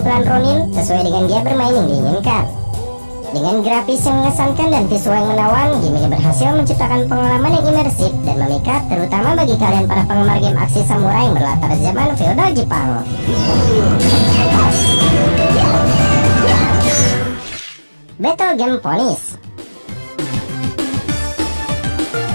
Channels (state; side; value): inverted; both; correlation -1.00